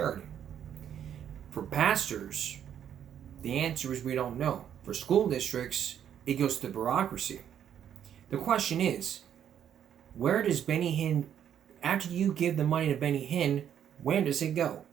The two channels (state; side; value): quieter; left; 9.4 dB